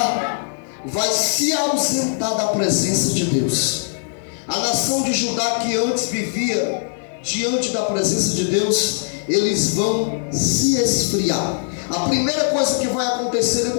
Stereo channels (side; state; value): right; silent; 65 dB below the other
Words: vai se ausentar da presença de Deus. A nação de Judá, que antes vivia diante da presença de Deus, eles vão se esfriar. A primeira coisa que vai acontecer